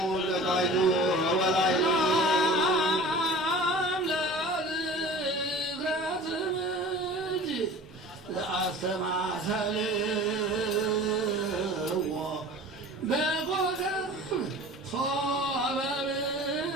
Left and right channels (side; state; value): both; normal; correlation 0.41